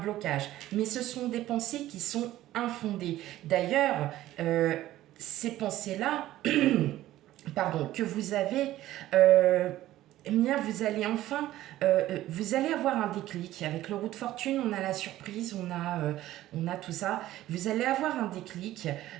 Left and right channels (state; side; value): quieter; left; 14.7 dB